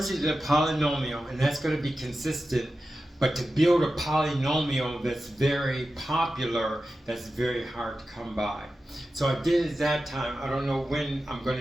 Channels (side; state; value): both; normal; correlation 0.93